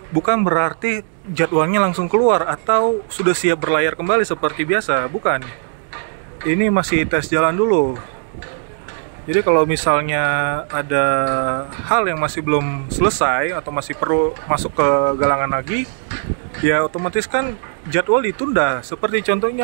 bukan berarti jadwalnya langsung keluar atau sudah siap berlayar kembali seperti biasa, bukan. Ini masih tes jalan dulu. Jadi kalau misalnya ada hal yang masih belum selesai atau masih perlu masuk ke galangan lagi, ya otomatis kan jadwal ditunda. Seperti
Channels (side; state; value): left; silent; digital silence